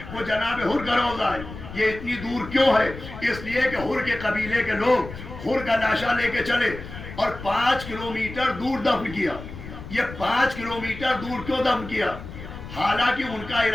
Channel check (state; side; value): noise; left; rumble, 12 dB below the sound